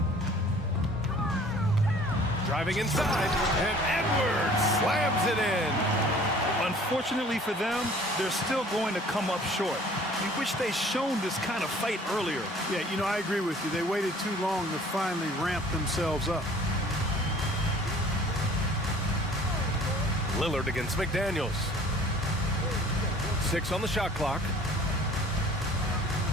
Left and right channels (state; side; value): normal; both; correlation 0.51